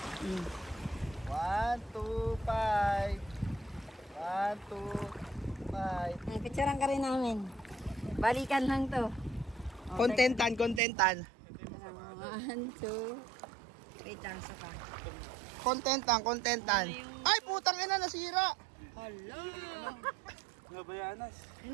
1, 2, 5. 1, 2, 5. Ay, picturean ka rin namin. Balikan lang to. Contentan, contentan. 1, 2. Wait lang, sa pa. Contentan, contentan. Ay, putang ina, nasira. Hala. Nabayanas.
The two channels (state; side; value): drops out; left; at 10.8 s